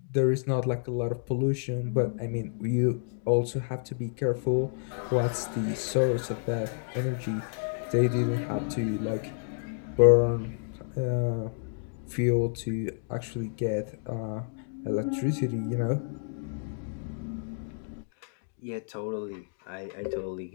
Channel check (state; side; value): silent; right; digital silence